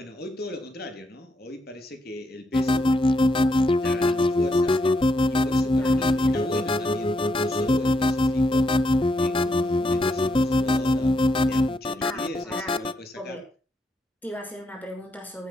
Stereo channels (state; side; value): normal; both; correlation 0.79